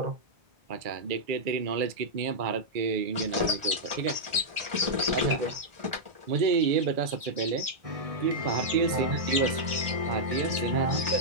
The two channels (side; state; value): left; late; 1.4 ms